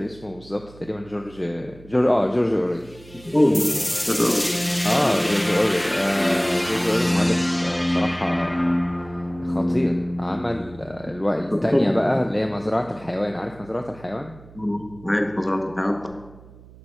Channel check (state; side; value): noise; right; hum, 21 dB below the sound